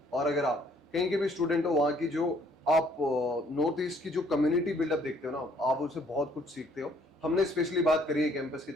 और अगर आप कहीं के भी स्टूडेंट हो, वहाँ की जो आप नॉर्थ ईस्ट की जो कम्युनिटी बिल्डअप देखते हो ना, आप उससे बहुत कुछ सीखते हो। हमने स्पेशली बात करी है कैंपस की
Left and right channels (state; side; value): normal; both; correlation 0.63